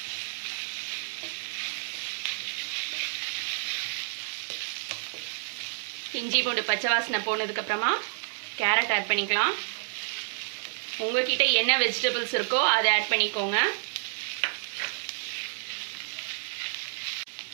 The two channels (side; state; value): left; silent; digital silence